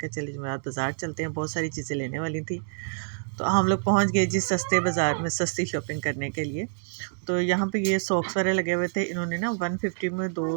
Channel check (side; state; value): left; silent; digital silence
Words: चलिए जुमेरात बाज़ार चलते हैं, बहुत सारी चीज़ें लेने वाली थी। तो हम लोग पहुँच गए जी सस्ते बाज़ार में सस्ती शॉपिंग करने के लिए। तो यहाँ पे ये सॉक्स वाले लगे हुए थे, इन्होंने ना 150 में